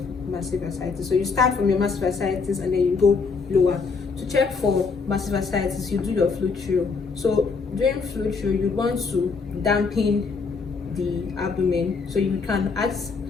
massive ascites. So you start from your massive ascites and then you go lower. To check for massive ascites, you do your fluid through. So during fluid through, you want to dampen the abdomen. So you can ask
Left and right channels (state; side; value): quieter; right; 4.8 dB